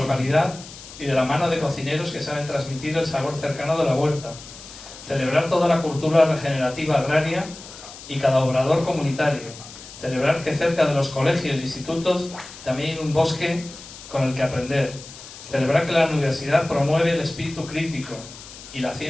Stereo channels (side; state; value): left; noise; hiss, 16 dB below the sound